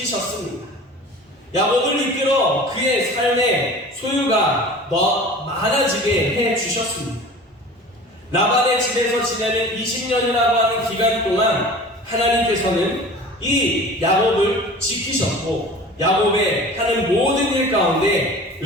야곱을 이끌어 그의 삶의 소유가 더 많아지게 해주셨습니다. 라반의 집에서 지내는 20년이라고 하는 기간 동안 하나님께서는 이 야곱을 지키셨고 야곱의 하는 모든 일 가운데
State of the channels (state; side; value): normal; both; correlation 0.40